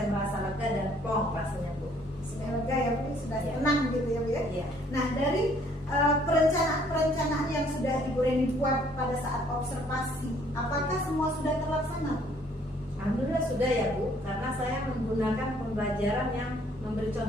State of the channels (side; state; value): both; normal; correlation 0.62